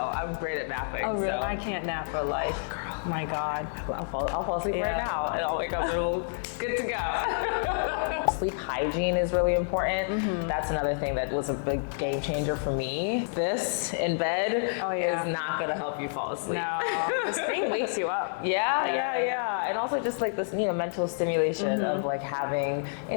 I'm great at napping. Oh really? So. I can't nap for life. My God. I'll fall asleep right now and I'll wake up and we'll good to go. Sleep hygiene is really important. That's another thing that was a big game changer for me. This in bed is not gonna help you fall asleep. No, the screen wakes you up. Yeah. And also just like this, mental stimulation of like having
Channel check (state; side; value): silent; right; digital silence